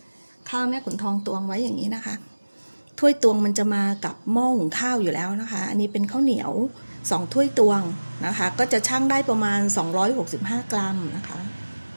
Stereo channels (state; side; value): inverted; both; correlation -1.00